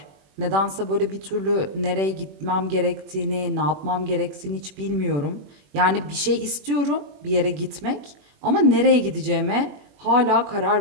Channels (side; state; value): left; late; 21 ms